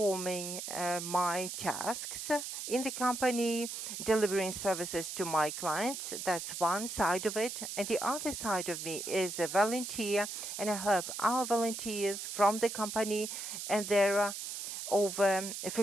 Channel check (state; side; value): noise; right; hiss, 6 dB below the sound